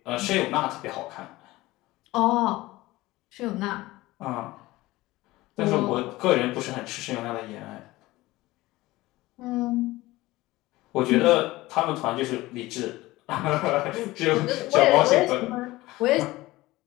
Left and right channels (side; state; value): right; quieter; 18.8 dB